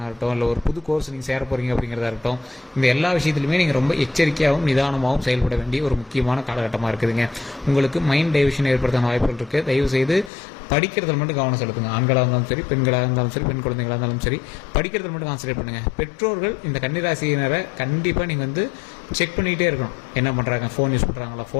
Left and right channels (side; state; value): right; drops out; at 10.3 s